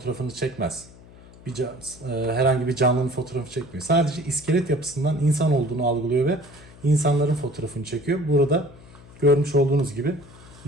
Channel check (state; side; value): noise; left; hum, 21 dB below the sound